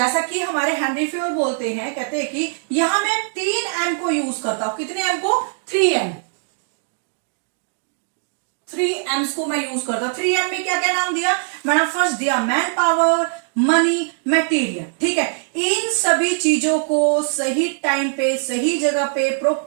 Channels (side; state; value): left; silent; digital silence